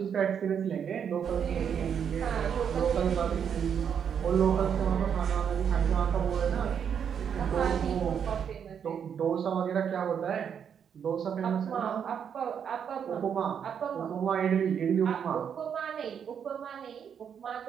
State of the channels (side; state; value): left; quieter; 7.8 dB